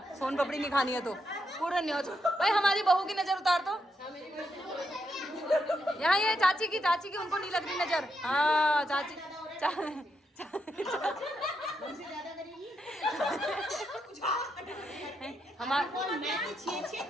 सोन पपड़ी नहीं खानी है तो पूरा नहीं हो भाई। हमारी बहू की नजर उतार दो यहाँ। ये चाची की उनको नहीं लग रही नजर। हाँ चाची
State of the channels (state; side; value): normal; both; correlation 0.81